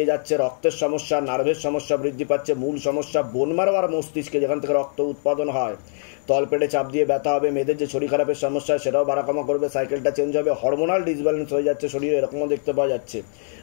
যাচ্ছে, রক্তের সমস্যা, নার্ভের সমস্যা বৃদ্ধি পাচ্ছে, মূল সমস্যা বোন মারো আর মস্তিষ্কে যেখান থেকে রক্ত উৎপাদন হয়, তলপেটে চাপ দিয়ে ব্যথা হবে, মেয়েদের যে শরীর খারাপের সমস্যা সেটাও বাড়াকমা করবে, সাইকেলটা চেঞ্জ হবে, হরমোনাল ডিসব্যালেন্স হয়ে যাচ্ছে শরীরে, এরকমও দেখতে পাওয়া যাচ্ছে।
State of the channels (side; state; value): right; silent; digital silence